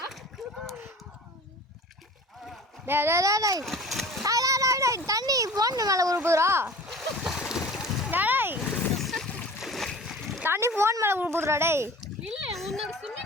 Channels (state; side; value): normal; both; correlation 0.42